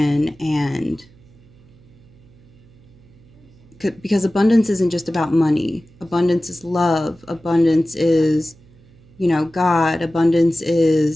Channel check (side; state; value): right; noise; hum, 27 dB below the sound